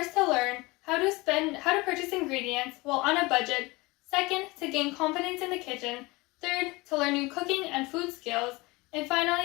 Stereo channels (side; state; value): right; quieter; 23.3 dB